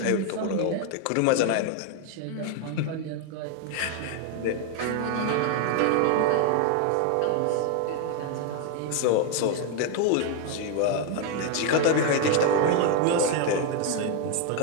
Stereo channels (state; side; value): different; both; correlation 0.01